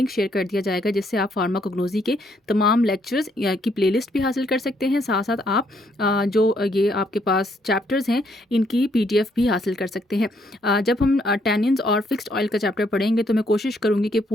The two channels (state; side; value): normal; both; correlation 0.71